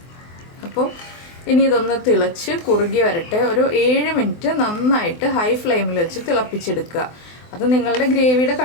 അപ്പോൾ ഇനി ഇതൊന്ന് തിളച്ച് കുറുകി വരട്ടെ. ഒരു 7 മിനിറ്റ് നന്നായിട്ട് ഹൈ ഫ്ലെയിമിൽ വെച്ച് തിളപ്പിച്ചെടുക്കുക. അത് നിങ്ങളുടെ ഗ്രേവിയുടെ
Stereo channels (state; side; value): late; right; 24 ms